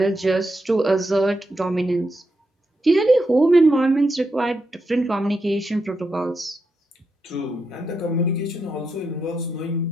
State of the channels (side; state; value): both; normal; correlation 0.84